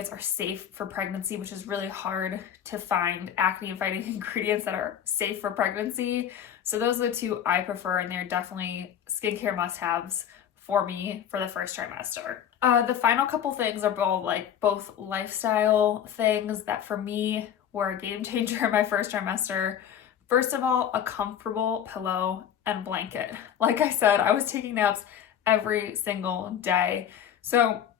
are safe for pregnancy, which is really hard to find acne fighting ingredients that are safe for pregnancy. So those are the 2 I prefer, and they're definitely skincare must-haves for me for the first trimester. The final couple things are both lifestyle things that for me were a game changer in my first trimester. First of all, a comfortable pillow and blanket. Like I said, I was taking naps every single day. So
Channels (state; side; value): quieter; right; 9.4 dB